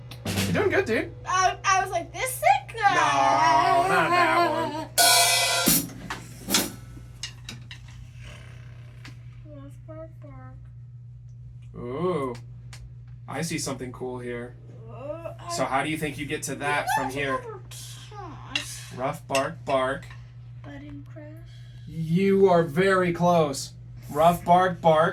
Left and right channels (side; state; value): both; identical; correlation 1.00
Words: You're doing good, dude. I was like, this sick? No, not that one. Bark, bark. Ooh, I see something cool here. Oh, So how do you think you get to that from here? I Rough bark, bark. Button crash. You are very close. Rough bark,